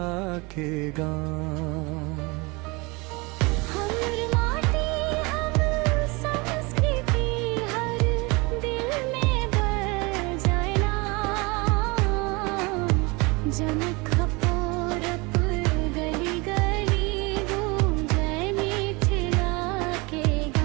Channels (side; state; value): left; quieter; 26.4 dB